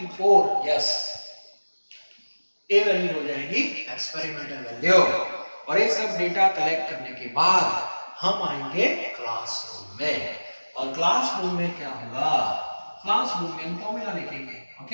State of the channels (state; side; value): inverted; both; correlation -1.00